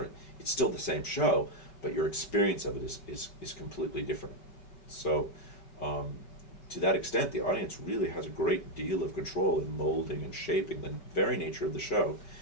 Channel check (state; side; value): late; right; 5.3 ms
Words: It's still the same show, but your experience of it is completely different. So to that extent, the audience really has a great deal of control in molding and shaping the very nature of the show,